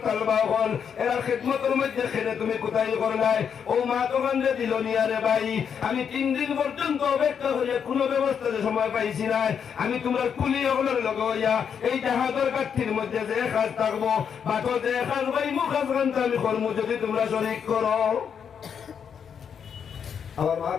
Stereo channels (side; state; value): right; quieter; 7.4 dB